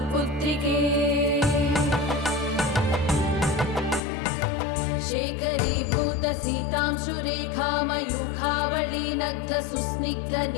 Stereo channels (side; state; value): right; drops out; at 4.0 s